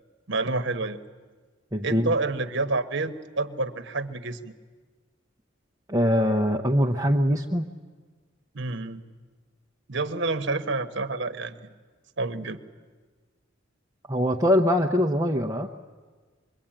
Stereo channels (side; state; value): both; normal; correlation 0.45